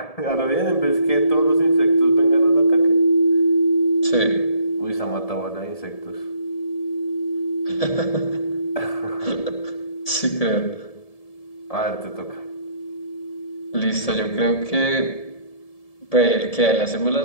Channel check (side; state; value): right; late; 1.7 ms